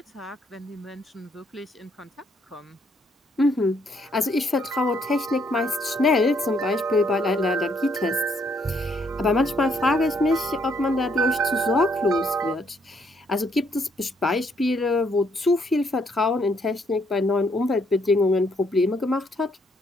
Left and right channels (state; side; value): normal; both; correlation 0.70